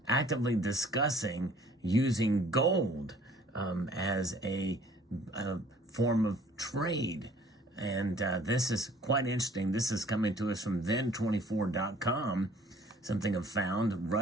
actively discussing using gold as a form of trade. And this is quite interesting. This is coming to us from then24.com. Something I've found.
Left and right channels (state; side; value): normal; both; correlation 0.55